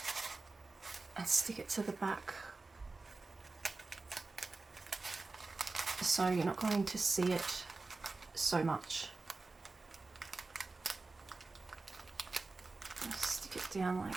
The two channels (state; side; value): quieter; left; 3.6 dB